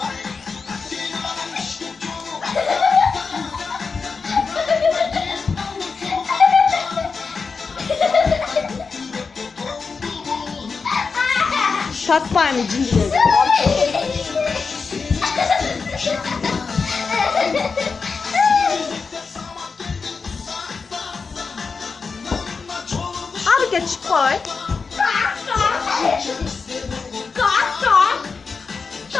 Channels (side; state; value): right; quieter; 4.9 dB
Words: Tatma aynı cincileri. Hareket koy.